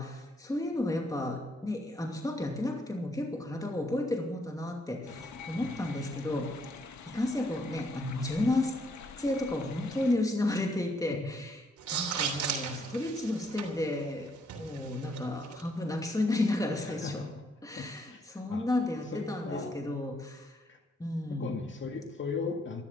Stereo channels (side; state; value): both; normal; correlation 0.71